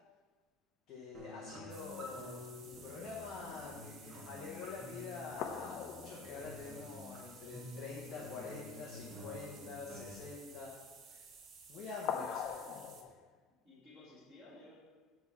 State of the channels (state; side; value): quieter; right; 4.2 dB